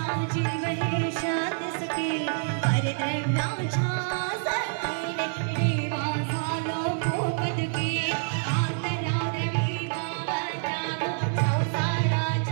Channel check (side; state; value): left; silent; 60 dB below the other